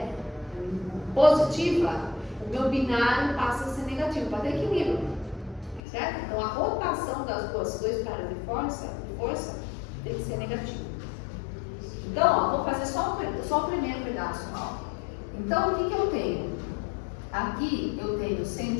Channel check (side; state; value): right; drops out; at 5.8 s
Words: positiva, o meu binário passa a ser negativo, para ter equilíbrio. Certo? Então, a rotação das dois caras de força tem que ser negativa. Então, ó, vou fazer só o primeiro pedaço. Ó. Então, o que eu tenho? Aqui eu tenho